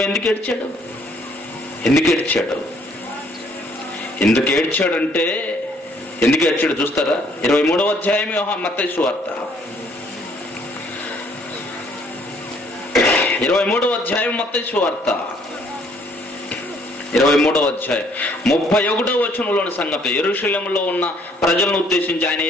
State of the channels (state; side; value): normal; both; correlation 0.64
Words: ఎందుకు ఏడ్చాడు? ఎందుకు ఏడ్చాడంటే, ఎందుకు ఏడ్చాడు చూస్తారా? 23వ అధ్యాయం మత్తయి సువార్త 23వ అధ్యాయం మత్తయి సువార్త 23వ అధ్యాయం 31వ వచనంలోని సంగతి. యెరూషలేములో ఉన్న ప్రజలను ఉద్దేశించి ఆయన